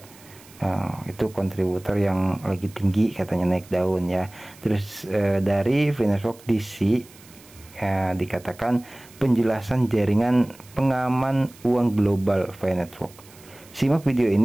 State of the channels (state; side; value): noise; right; hiss, 24 dB below the sound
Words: Itu kontributor yang lagi tinggi katanya, naik daun ya. Terus dari Network DC dikatakan penjelasan jaringan pengaman uang global Network. Simak video